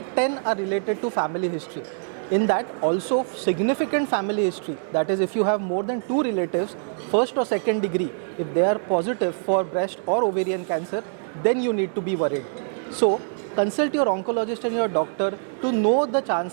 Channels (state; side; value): silent; left; digital silence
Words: 10 are related to family history. In that, also significant family history, that is if you have more than 2 relatives, first or second degree, if they are positive for breast or ovarian cancer, then you need to be worried. So consult your oncologist and your doctor to know the